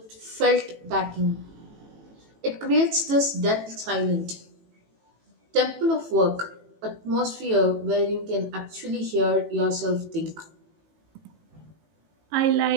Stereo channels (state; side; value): late; left; 18 ms